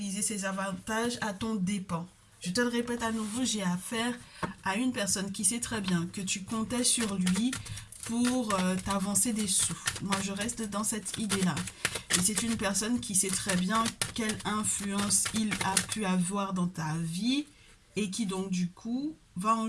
ses avantages à ton dépens. Je te le répète à nouveau, j'ai affaire à une personne qui sait très bien que tu comptais sur lui pour t'avancer des sous. Moi, je reste dans cette idée-là. Et c'est une personne qui sait très bien quelle influence il a pu avoir dans ta vie et qui donc du coup va en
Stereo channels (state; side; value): identical; both; correlation 1.00